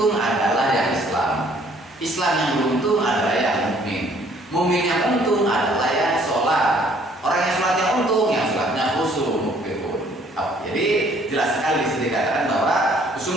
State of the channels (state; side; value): normal; both; correlation 0.60